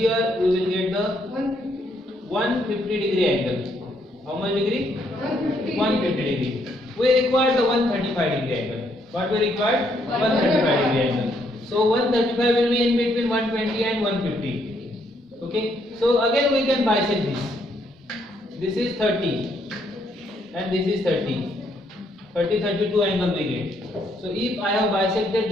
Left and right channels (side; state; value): both; normal; correlation 0.72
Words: we will get the 150 degree angle. How much degree? 150 degree. We require the 135 degree angle. What we require? 135 degree angle. So 135 will be in between 120 and 150. Okay. So again we can bisect this. This is 30 and this is 30. 32 angle we get. So if I have bisected